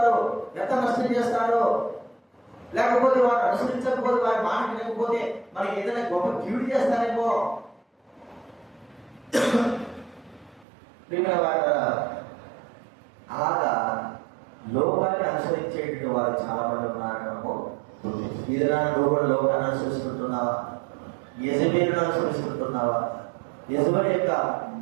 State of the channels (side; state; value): left; drops out; at 10.7 s